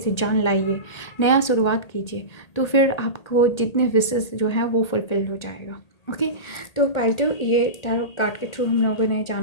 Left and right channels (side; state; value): right; late; 1.8 ms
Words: जान लाइए, नया शुरुआत कीजिए। तो फिर आपको जितने विशेस जो है वो फुलफिल हो जाएगा। ओके, तो पाइल ये टैरो कार्ड के थ्रू हम लोगों ने